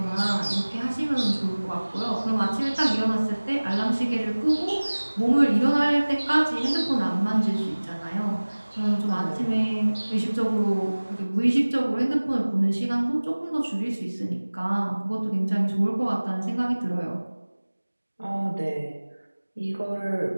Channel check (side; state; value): both; inverted; correlation -1.00